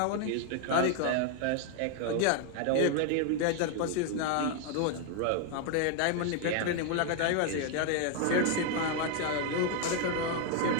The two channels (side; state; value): both; different; correlation 0.00